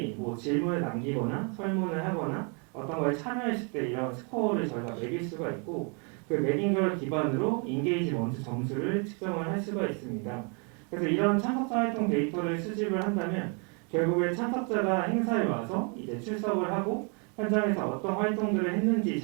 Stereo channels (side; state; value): left; quieter; 36.5 dB